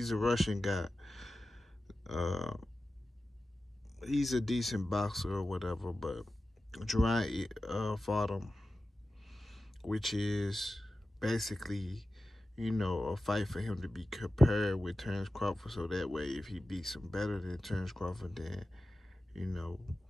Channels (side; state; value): both; normal; correlation 0.94